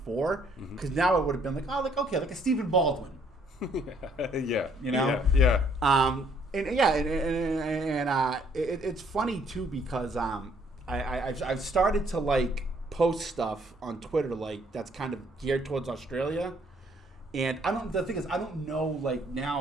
because now it would have been like, oh, like okay, like a Stephen Baldwin. Yeah. You know. Yeah. It's funny too because I've started to like post stuff on Twitter like that's kind of geared towards Australia, and the thing is I don't know like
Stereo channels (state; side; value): normal; both; correlation 0.65